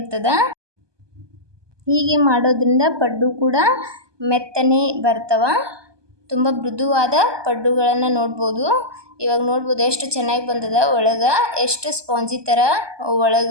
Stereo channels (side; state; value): left; late; 1.2 ms